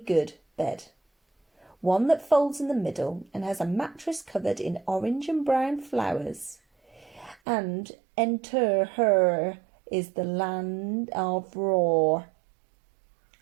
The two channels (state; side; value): drops out; left; at 7.4 s